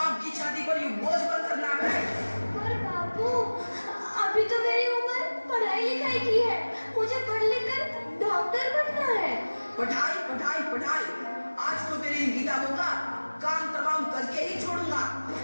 की छाती पर यूं बोझ बनकर ना बैठ। पर बापू, अभी तो मेरी उम्र पढ़ाई लिखाई की है। मुझे पढ़ लिख कर डॉक्टर बनना है। पढ़ाई पढ़ाई पढ़ाई, आज तो तेरी इन किताबों का काम तमाम करके ही छोड़ूंगा।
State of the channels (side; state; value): both; inverted; correlation -1.00